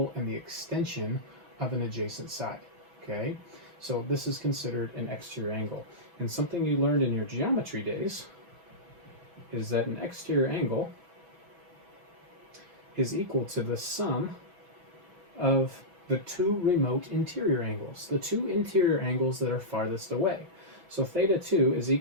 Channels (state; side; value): late; left; 6.1 ms